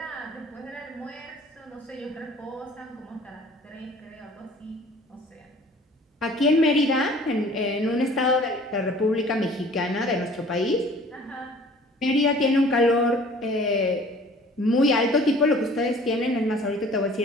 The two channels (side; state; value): both; normal; correlation 0.50